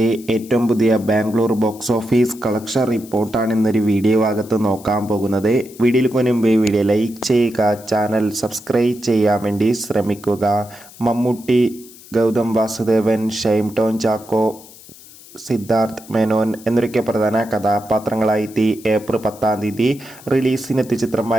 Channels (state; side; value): noise; left; hiss, 21 dB below the sound